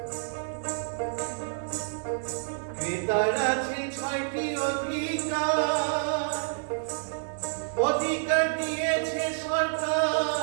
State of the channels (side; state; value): left; silent; digital silence